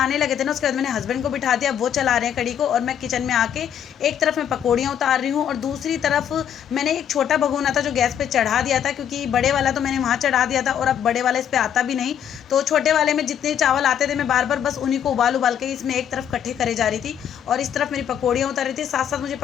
लगे थे ना, उसके बाद मैंने हस्बैंड को बिठा दिया, वो चला रहे हैं कड़ी को। और मैं किचन में आके एक तरफ मैं पकौड़ियाँ उतार रही हूँ और दूसरी तरफ मैंने एक छोटा भगोना था जो गैस पे चढ़ा दिया था, क्योंकि बड़े वाला तो मैंने वहाँ चढ़ा दिया था और अब बड़े वाला इस पे आता भी नहीं। तो छोटे वाले में जितने चावल आते थे मैं बार बार बस उन्हीं को उबाल के इसमें एक तरफ इकट्ठे करे जा रही थी और इस तरफ मेरी पकौड़ियाँ उतार रही थी। साथ साथ मुझे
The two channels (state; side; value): quieter; right; 9.2 dB